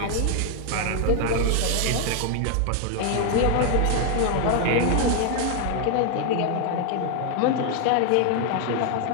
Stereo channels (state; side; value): different; both; correlation 0.00